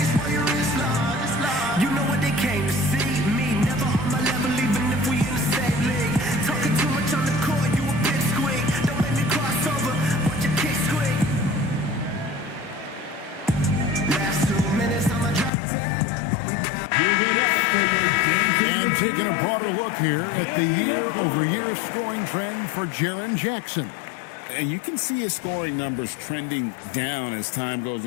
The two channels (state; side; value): drops out; right; at 15.5 s